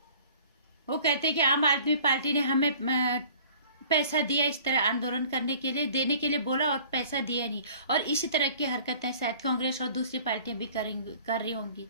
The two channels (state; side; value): inverted; both; correlation -0.49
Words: वो कहते हैं कि आम आदमी पार्टी ने हमें पैसा दिया इस तरह आंदोलन करने के लिए, देने के लिए बोला और पैसा दिया नहीं, और इसी तरह की हरकतें शायद कांग्रेस और दूसरी पार्टियां भी कर रही होंगी।